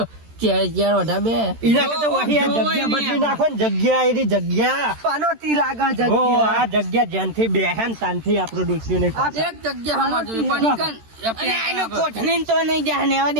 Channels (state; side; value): late; left; 13 ms